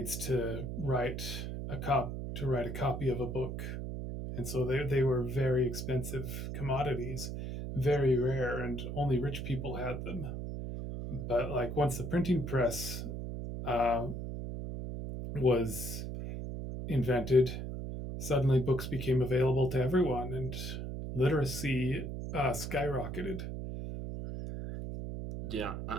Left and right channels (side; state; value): right; noise; hum, 5 dB below the sound